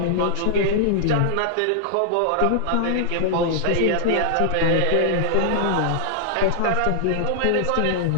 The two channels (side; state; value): both; different; correlation -0.01